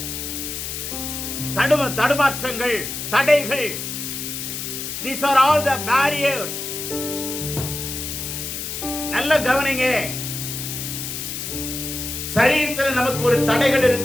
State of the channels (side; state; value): left; noise; hiss, 6 dB below the sound